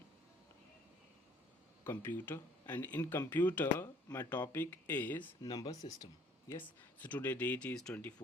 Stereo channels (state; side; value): normal; both; correlation 0.57